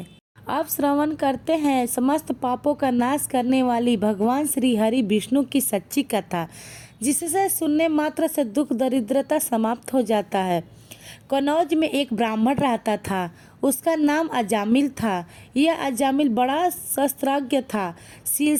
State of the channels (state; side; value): identical; both; correlation 1.00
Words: अब श्रवण करते हैं समस्त पापों का नाश करने वाली भगवान श्री हरि विष्णु की सच्ची कथा, जिससे सुनने मात्र से दुख दरिद्रता समाप्त हो जाता है। कनौज में एक ब्राह्मण रहता था, उसका नाम अजामिल था। यह अजामिल बड़ा शस्त्रज्ञ था। शील,